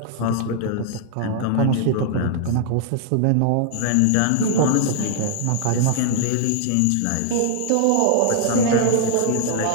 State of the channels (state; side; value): different; both; correlation 0.00